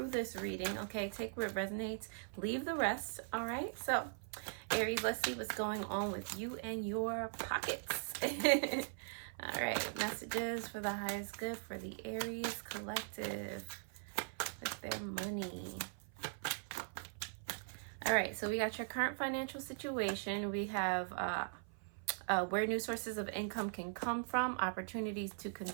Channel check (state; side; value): silent; left; 51 dB below the other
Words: this reading. Okay, take what resonates, leave the rest. All right, so Aries, let's see what's going on with you and your pockets. All right, messages for the highest good for the Aries collective with their money. All right, so we got your current financial situation. We have where new sources of income can come from, opportunities to